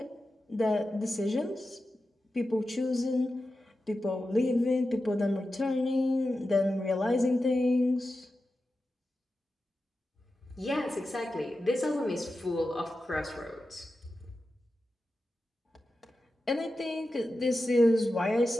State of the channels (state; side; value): normal; both; correlation 0.92